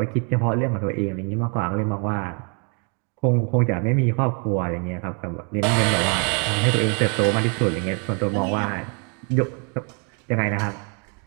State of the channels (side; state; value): left; quieter; 36.8 dB